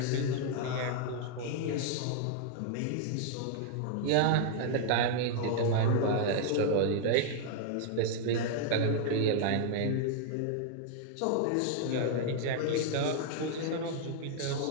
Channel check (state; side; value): different; both; correlation 0.00